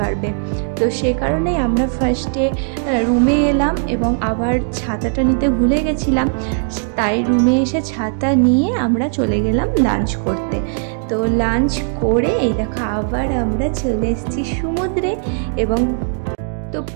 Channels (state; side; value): silent; left; 66 dB below the other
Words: তো সে কারণে আমরা ফার্স্টে রুমে এলাম, এবং আবার ছাতাটা নিতে ভুলে গেছিলাম, তাই রুমে এসে ছাতা নিয়ে আমরা চলে গেলাম লাঞ্চ করতে। তো লাঞ্চ করে এই দেখো আবার আমরা চলে এসেছি সমুদ্রে, এবং তো